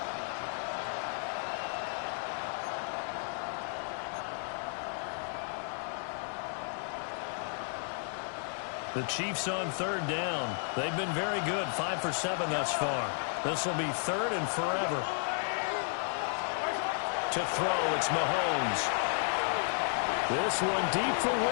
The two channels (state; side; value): silent; right; 56 dB below the other